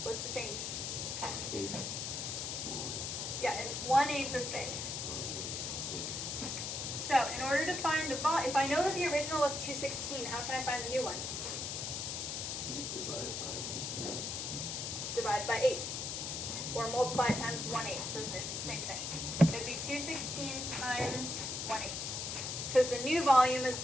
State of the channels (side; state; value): left; noise; hiss, 3 dB below the sound